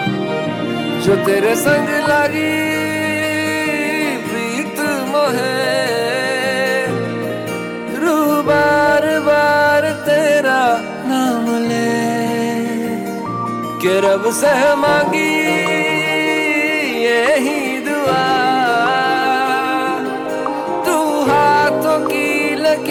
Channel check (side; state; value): both; identical; correlation 1.00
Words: जो तेरे संग लगी प्रीत मोहे रू बार बार तेरा नाम ले के रब से मांगी यही दुआ तू हाथों की